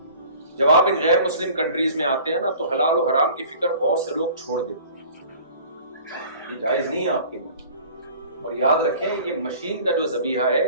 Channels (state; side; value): inverted; both; correlation -0.46